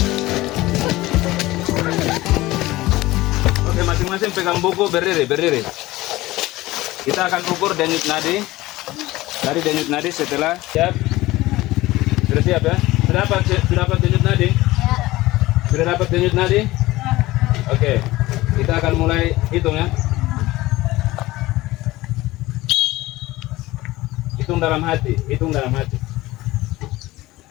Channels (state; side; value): quieter; right; 18.4 dB